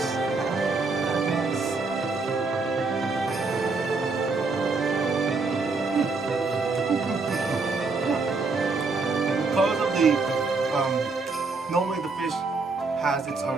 Because of the normally the fish has its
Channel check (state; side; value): quieter; left; 3.9 dB